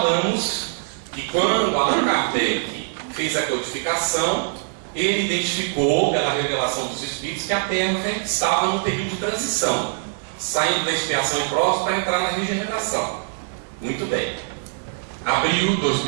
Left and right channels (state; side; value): silent; left; digital silence